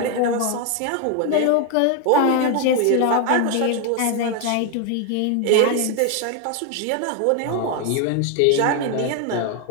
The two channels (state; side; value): different; both; correlation 0.01